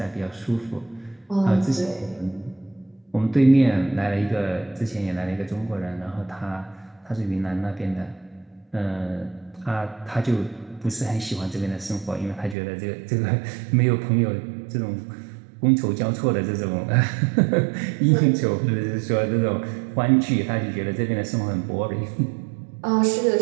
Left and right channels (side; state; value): left; drops out; at 12.6 s